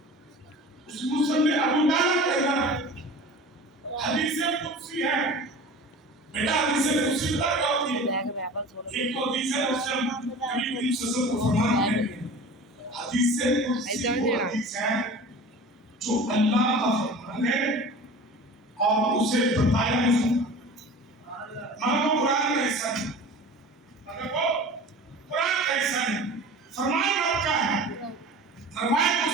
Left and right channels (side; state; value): both; normal; correlation 0.39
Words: اس مسلم اولیاء کہنا ہے حدیث قدسی ہے. بیٹا حدیث قدسی بتا کیا ہوتی ہے؟ ایک تو حدیث ہے مسلم نبی کریم صلی اللہ علیہ وسلم کو فرمان ہے حدیث قدسی وہ حدیث ہے جو اللہ کا فرمان ہے اور اسے بتایا نہیں مگر وہ قرآن کا حصہ نہیں مگر وہ قرآن کا حصہ نہیں. فرمان رب کا ہے. روایت